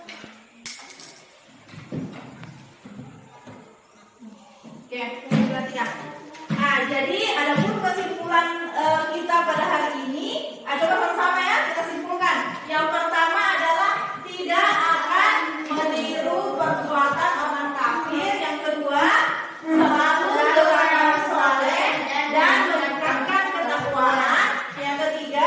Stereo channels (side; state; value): both; identical; correlation 1.00